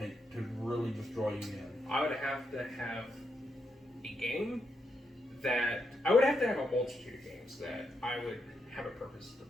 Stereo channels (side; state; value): both; normal; correlation 0.81